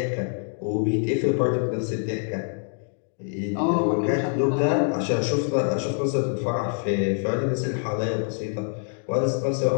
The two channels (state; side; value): silent; right; 62 dB below the other